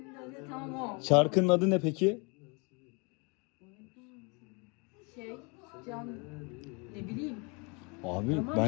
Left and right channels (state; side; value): quieter; right; 31.5 dB